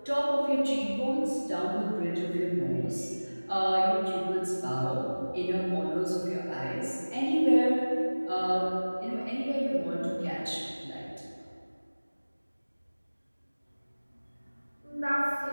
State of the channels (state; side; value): inverted; both; correlation -1.00